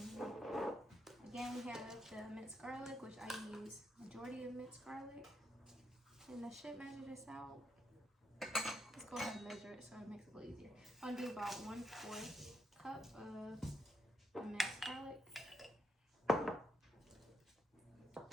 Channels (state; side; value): normal; both; correlation 0.78